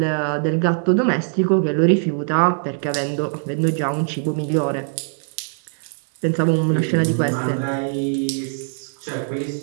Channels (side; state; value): left; silent; 57 dB below the other